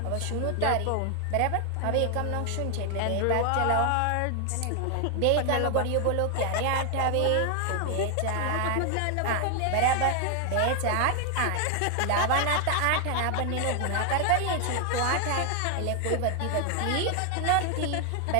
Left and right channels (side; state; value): both; different; correlation 0.00